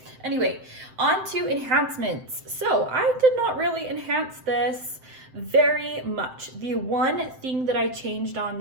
anyway, on to enhancements. So I did not really enhance this very much. The one thing that I changed on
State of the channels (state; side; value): late; left; 7.7 ms